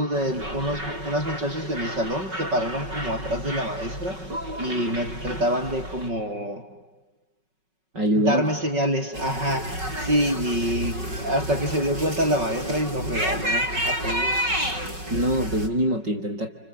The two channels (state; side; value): late; left; 5.4 ms